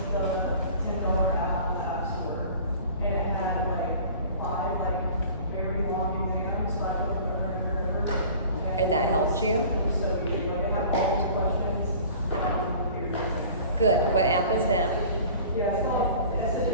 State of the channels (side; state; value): both; inverted; correlation -0.44